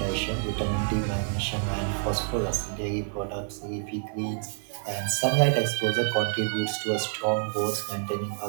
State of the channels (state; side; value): silent; left; 59 dB below the other